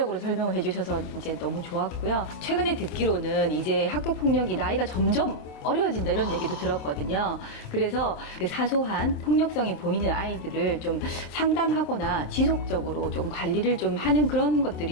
설명을 해주셔서 이제 너무 좋았고요. 최근에 듣기로는 이제 학교폭력이 나이가 점점 어려워진다 이런 얘기도 들었거든요. 그래서 그 사소한 폭력성이 보이는 아이들을 좀 상담하거나 지속적으로 좀 관리를 좀 하는 그런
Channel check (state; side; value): late; right; 27 ms